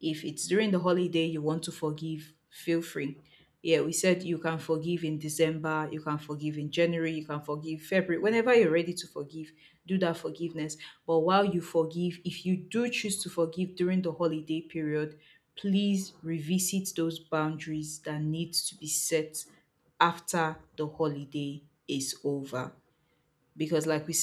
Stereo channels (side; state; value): both; identical; correlation 1.00